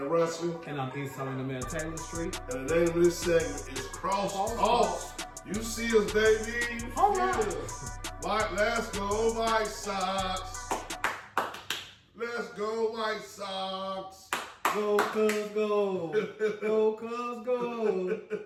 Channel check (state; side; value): identical; both; correlation 1.00